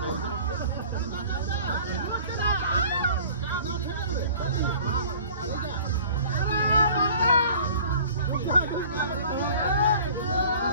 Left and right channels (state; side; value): inverted; both; correlation -0.47